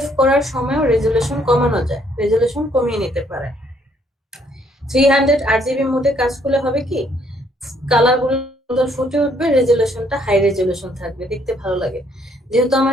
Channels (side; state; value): both; normal; correlation 0.67